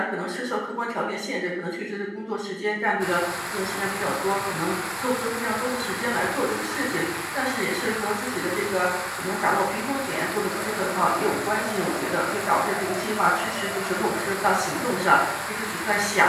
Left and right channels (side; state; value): both; identical; correlation 1.00